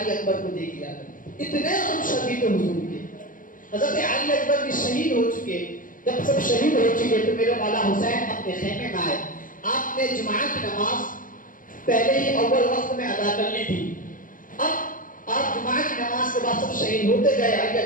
اکبر کو دیکھ لیا کرتے، اتنے ہم شدید حضور کے۔ حضرت علی اکبر بھی شہید ہو چکے، جب سب شہید ہو چکے تو میرے مولا حسین اپنے خیمے میں آئے۔ آپ نے جمعہ کی نماز پہلے ہی اول وقت میں ادا کر لی تھی، اب آپ جمعہ کی نماز کے بعد سب شہید ہوتے گئے، علی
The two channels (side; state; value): right; late; 0.39 ms